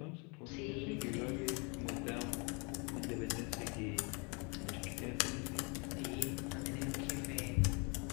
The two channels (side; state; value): right; quieter; 32.1 dB